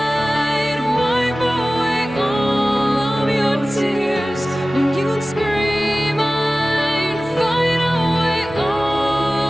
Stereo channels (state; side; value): normal; both; correlation 0.97